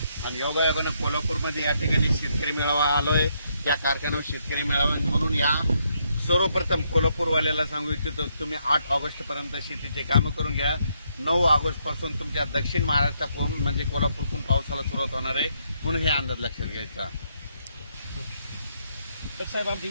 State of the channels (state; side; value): inverted; both; correlation -0.76